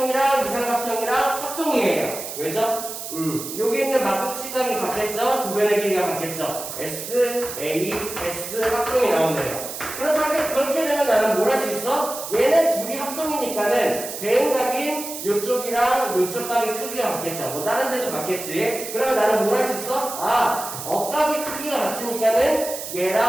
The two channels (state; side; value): noise; right; hiss, 8 dB below the sound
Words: 합동이에요. 왜죠? 여기 있는 막국지각이 같겠죠? 두 변의 길이가 같겠죠? S, A, S 합동이 나오네요. 그렇게 되면 나는 뭘 할 수 있어? 얘네 둘이 합동이니까는 대응각인 요쪽이랑 요쪽 각의 크기가 같겠죠. 뭐 다른 데도 같겠지. 그러면 나는 뭘 할 수 있어? 억각의 크기가 같으니까는